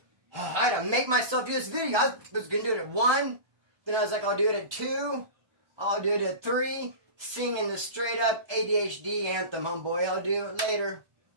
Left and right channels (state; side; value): late; left; 1.2 ms